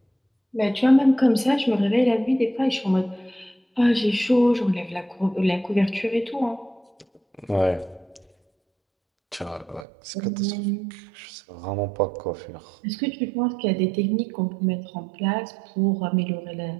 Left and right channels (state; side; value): drops out; left; at 9.9 s